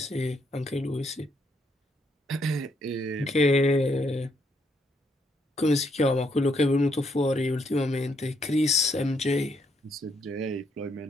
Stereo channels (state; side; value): normal; both; correlation 0.74